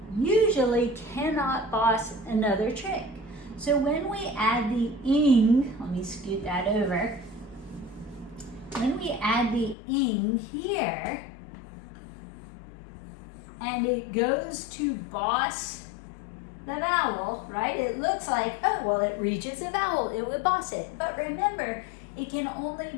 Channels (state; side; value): drops out; right; at 9.8 s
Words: usually cannot boss another trick. So when we add the ing, let me scoot that over. When we add the ing here, and it goes to boss the vowel, right? It looks like, oh, well, it reaches a vowel, it would boss it. But remember, it can only